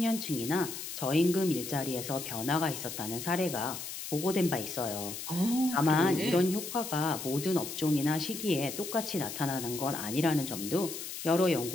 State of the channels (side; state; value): left; noise; hiss, 8 dB below the sound